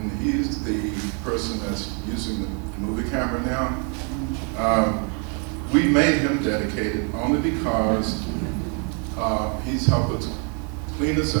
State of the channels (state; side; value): quieter; left; 38.1 dB